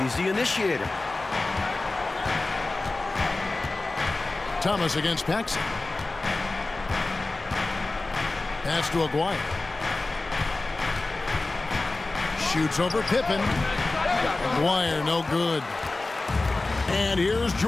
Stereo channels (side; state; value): right; quieter; 3.2 dB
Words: He's the initiator. Thomas against Paxson. Pass to Aguirre. Shoots over Pippen. Aguirre, no good. And here's